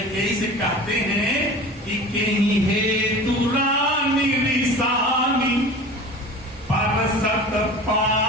से कहते हैं कि कहीं हेतु रानी रिसानी परसत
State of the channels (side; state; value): both; normal; correlation 0.37